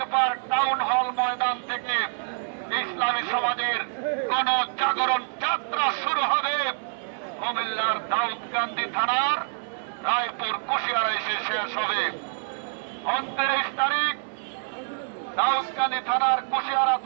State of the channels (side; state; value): left; silent; 60 dB below the other